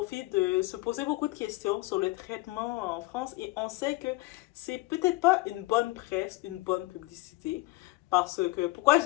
de se poser beaucoup de questions sur le traitement en France. Et on sait que c'est peut-être pas une bonne presse, une bonne publicité. Parce que, pourquoi je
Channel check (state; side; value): quieter; right; 21.4 dB